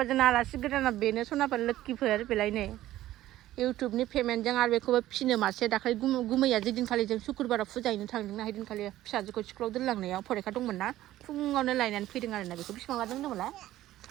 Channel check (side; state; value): left; quieter; 14.5 dB